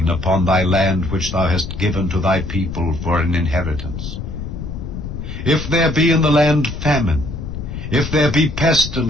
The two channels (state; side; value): noise; left; rumble, 7 dB below the sound